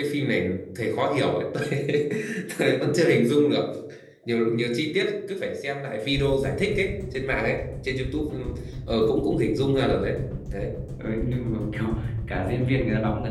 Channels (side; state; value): both; identical; correlation 1.00